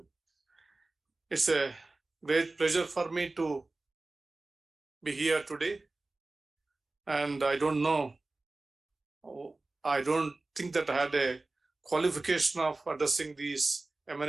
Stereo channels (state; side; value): quieter; left; 3.2 dB